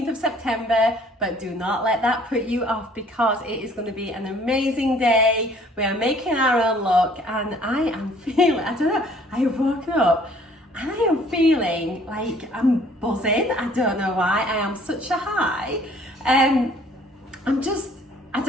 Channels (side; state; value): both; normal; correlation 0.57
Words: of September, but do not let that put you off because it is going to be an amazing day. We are making our own look and I am feeling, I don't know, I have woken up and I am feeling like I'm buzzing. I don't know why, I am such a high. I